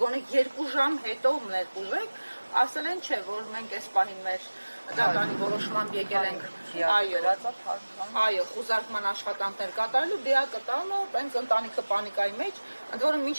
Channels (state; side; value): inverted; both; correlation -1.00